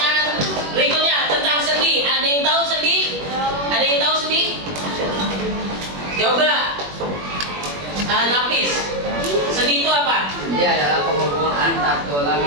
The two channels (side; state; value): left; late; 21 ms